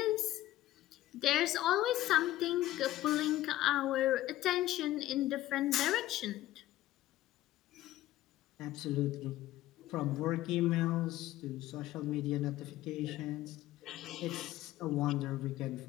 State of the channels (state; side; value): quieter; right; 15.1 dB